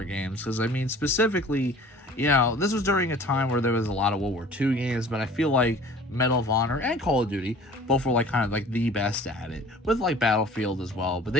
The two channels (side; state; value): both; normal; correlation 0.47